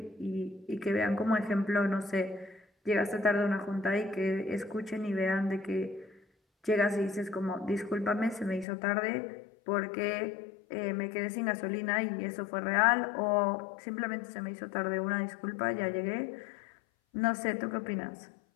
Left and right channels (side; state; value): right; drops out; at 8.7 s